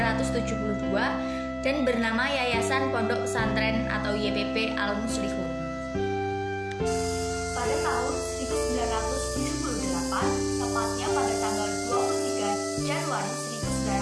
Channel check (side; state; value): both; identical; correlation 1.00